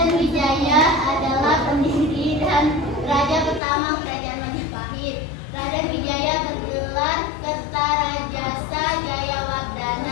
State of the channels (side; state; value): right; drops out; at 3.6 s